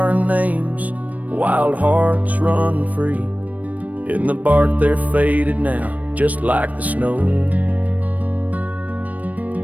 names, wild hearts run free. In the bark they're faded now, just like the snow.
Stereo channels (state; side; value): late; left; 0.072 ms